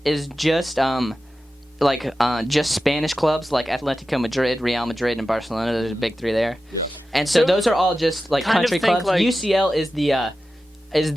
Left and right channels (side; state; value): both; normal; correlation 0.93